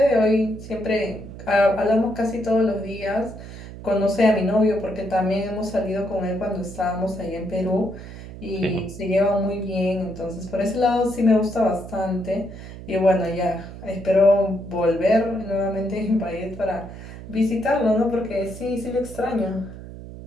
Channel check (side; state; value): right; noise; hum, 13 dB below the sound